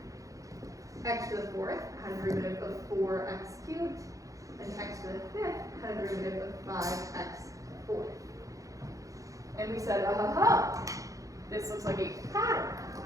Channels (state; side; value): late; left; 0.16 ms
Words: X to the fourth had a derivative of 4x cubed, and x to the fifth had a derivative of 5x fourth. And we said, this looks like a pattern.